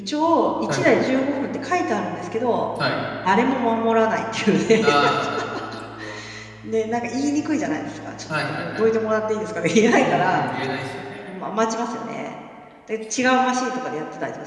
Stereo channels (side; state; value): both; identical; correlation 1.00